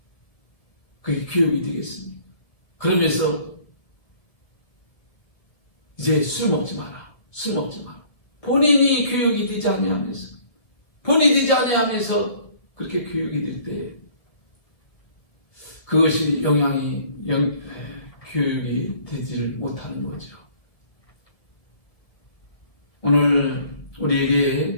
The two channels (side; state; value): right; late; 1.9 ms